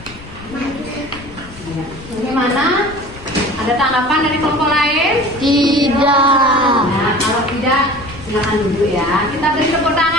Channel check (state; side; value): noise; left; rumble, 17 dB below the sound